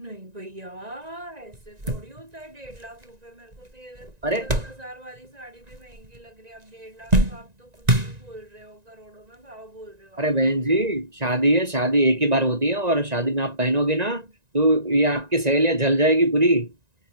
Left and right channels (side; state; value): left; late; 1.9 ms